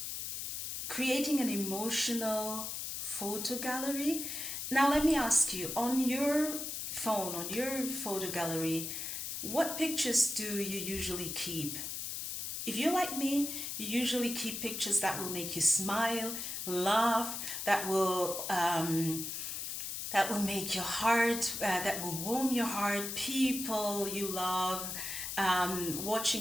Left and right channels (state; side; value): noise; left; hiss, 4 dB below the sound